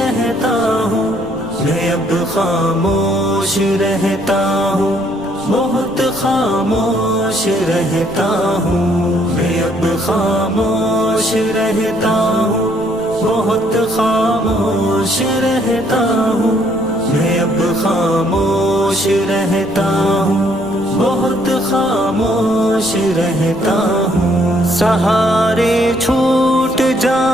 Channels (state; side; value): noise; right; rumble, 19 dB below the sound